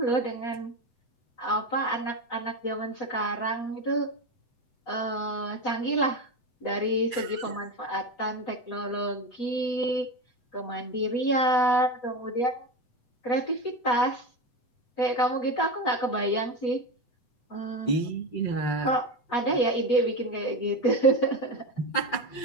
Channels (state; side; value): late; right; 8.0 ms